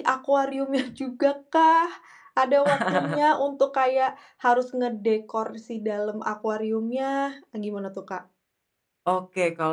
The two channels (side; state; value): both; identical; correlation 1.00